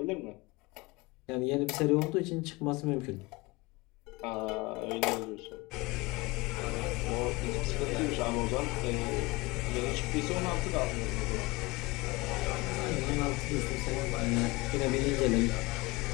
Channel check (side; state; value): right; quieter; 23.4 dB